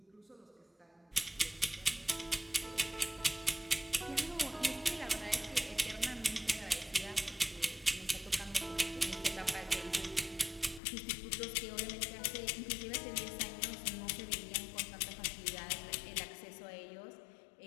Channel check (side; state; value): right; drops out; at 10.8 s